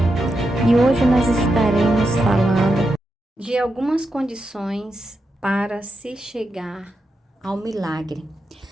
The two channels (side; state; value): both; normal; correlation 0.86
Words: E hoje nós estaremos falando de algumas condições para se chegar ao milagre.